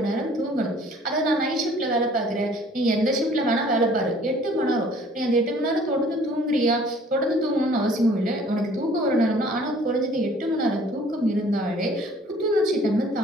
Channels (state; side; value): normal; both; correlation 0.54